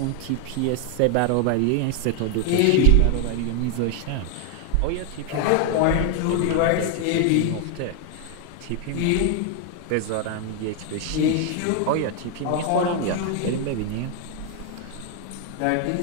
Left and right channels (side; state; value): both; different; correlation 0.00